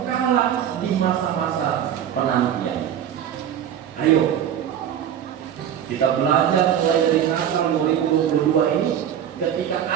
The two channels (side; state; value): left; quieter; 9.7 dB